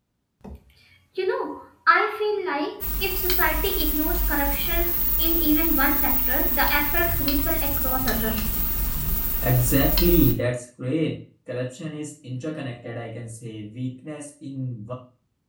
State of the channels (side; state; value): both; identical; correlation 1.00